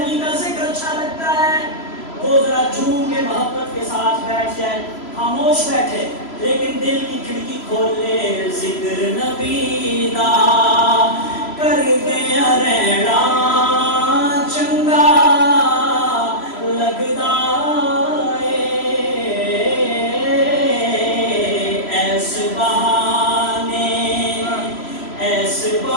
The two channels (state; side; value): late; right; 3.0 ms